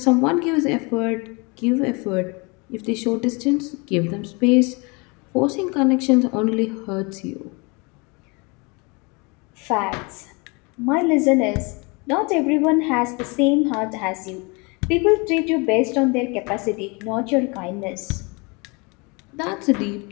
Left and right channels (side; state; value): right; quieter; 29.1 dB